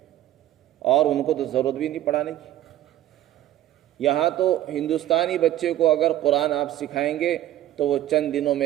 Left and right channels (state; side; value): quieter; left; 13.4 dB